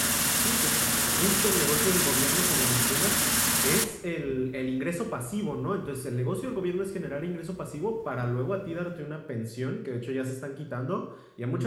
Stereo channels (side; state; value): both; identical; correlation 1.00